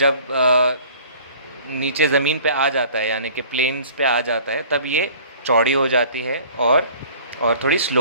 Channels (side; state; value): both; inverted; correlation -0.49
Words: नीचे ज़मीन पे आ जाता है, यानी कि प्लेन्स पे आ जाता है, तब ये चौड़ी हो जाती है और थोड़ी